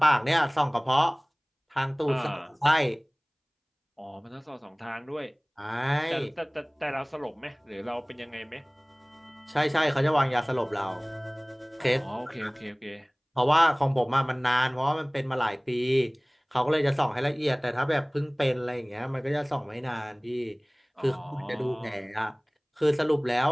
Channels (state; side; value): identical; both; correlation 1.00